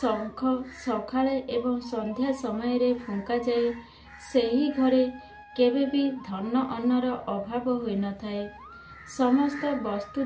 सकाळे एवं संध्या समय रे फुंका जाए, सेही घरे केबे भी धन अन्नर अभाव होई न थाए। समस्त वस्तु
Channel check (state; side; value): identical; both; correlation 1.00